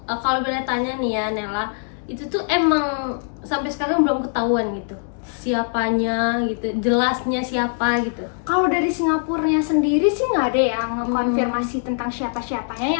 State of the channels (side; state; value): right; silent; digital silence